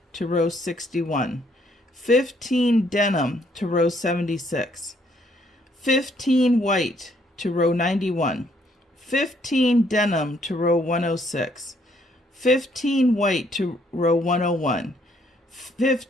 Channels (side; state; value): both; normal; correlation 0.68